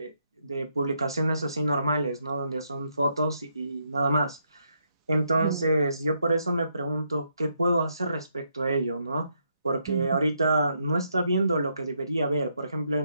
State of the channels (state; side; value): inverted; both; correlation -0.77